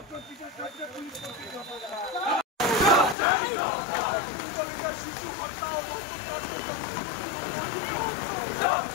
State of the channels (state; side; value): drops out; right; at 3.2 s